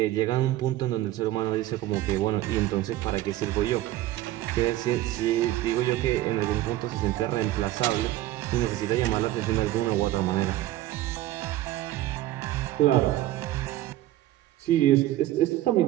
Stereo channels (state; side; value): quieter; left; 14.9 dB